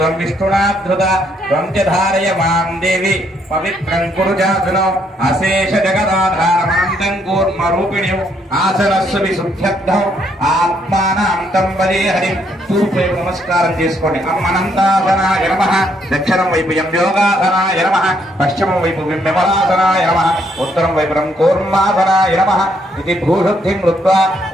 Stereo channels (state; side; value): normal; both; correlation 0.71